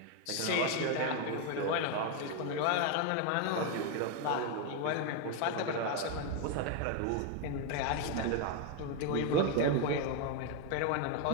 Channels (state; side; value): different; both; correlation 0.01